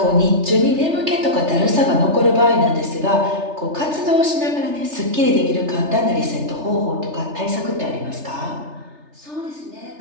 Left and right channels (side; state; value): left; late; 3.3 ms